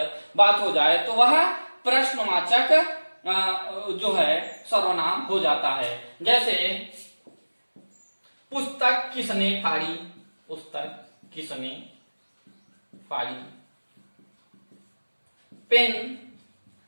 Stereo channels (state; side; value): inverted; both; correlation -1.00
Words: हो जाए, तो वह प्रश्नवाचक जो है सर्वनाम हो जाता है। जैसे पुस्तक किसने फाड़ी, पुस्तक किसने फाड़ी, पेन